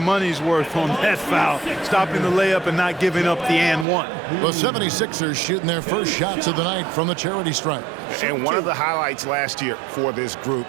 worth on that foul, stopping the layup and not giving up the and one. The 76ers shooting their first shots of the night from the charity stripe. And one of the highlights last year for this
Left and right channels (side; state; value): left; drops out; at 3.9 s